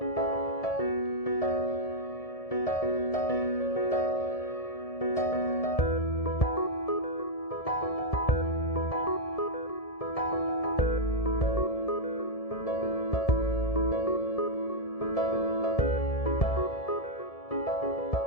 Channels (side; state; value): right; late; 1.7 ms